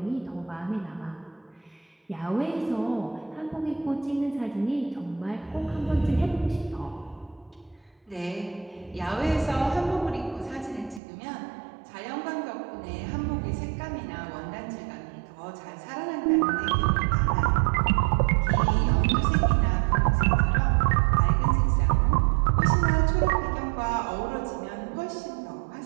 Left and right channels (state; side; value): drops out; left; at 11.0 s